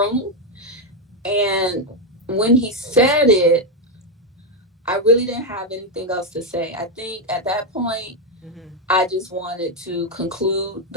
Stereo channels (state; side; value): normal; both; correlation 0.04